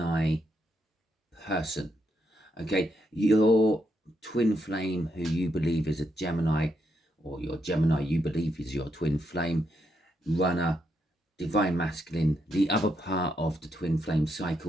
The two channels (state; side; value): normal; both; correlation 0.79